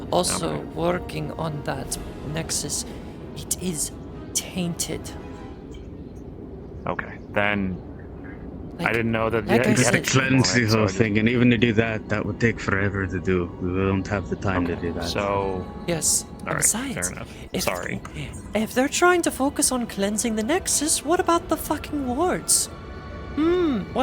also working on that Nexus. It is tainted. Okay, then I didn't know that. like I you Just said- to had cleanse the so whole I just- thing, and even to do that, that would take forever to do. We don't have the time to do that. So. Yes. All right, Besides, fair enough. if- Sorry. If they're trying to focus on cleansing the Nexus, what about the fucking wards?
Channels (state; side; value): identical; both; correlation 1.00